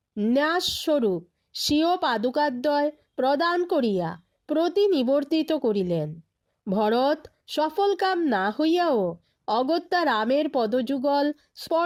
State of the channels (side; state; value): both; identical; correlation 1.00